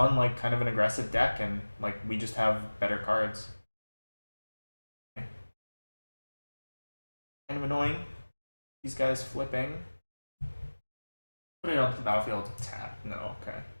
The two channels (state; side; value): inverted; both; correlation -1.00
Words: like kind of an aggressive deck, and like we just have better cards. Okay. Kind of annoying. These guys flipping. Put it onto the battlefield. Tap. No. Okay.